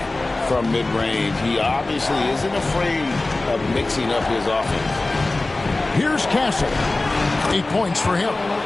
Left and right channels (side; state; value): right; quieter; 3.0 dB